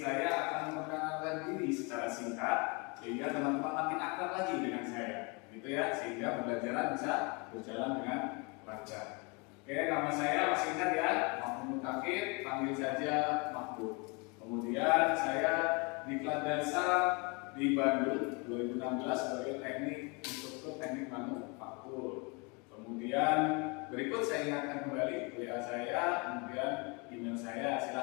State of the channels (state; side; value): quieter; right; 30.7 dB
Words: akan memperkenalkan diri secara singkat sehingga teman-teman makin akrab lagi dengan saya. Gitu ya, sehingga pembelajaran bisa berjalan dengan lancar. Oke, nama saya masih ingat ya, Mahmud Kafir, panggil saja Mahmud. Kemudian saya diklat dasar di Bandung 2016 sebagai teknik instruktur teknik manufaktur. Kemudian berikut saya ingatkan kembali WA saya, kemudian email saya.